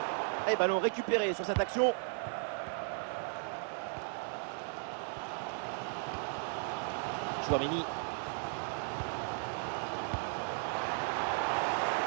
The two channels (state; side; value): silent; left; 54 dB below the other